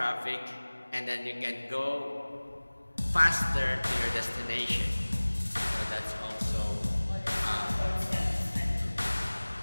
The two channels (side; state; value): both; inverted; correlation -1.00